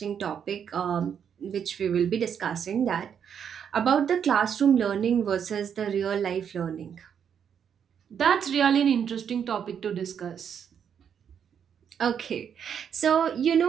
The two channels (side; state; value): left; quieter; 8.0 dB